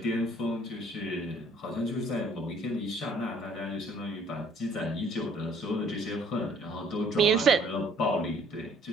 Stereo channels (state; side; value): normal; both; correlation 0.58